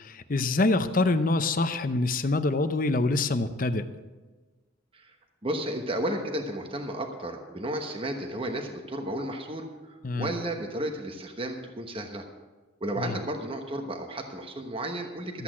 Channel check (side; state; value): both; normal; correlation 0.51